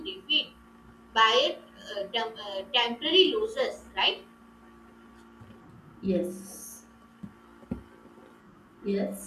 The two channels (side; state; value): both; identical; correlation 1.00